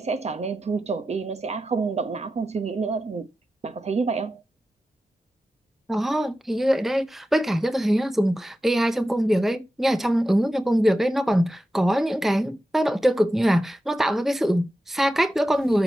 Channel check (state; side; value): normal; both; correlation 0.92